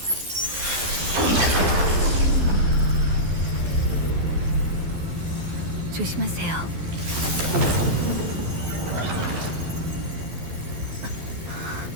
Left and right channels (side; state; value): left; late; 12 ms